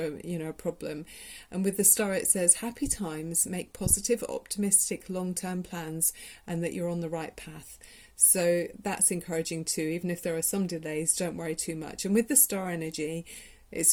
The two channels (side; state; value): both; identical; correlation 1.00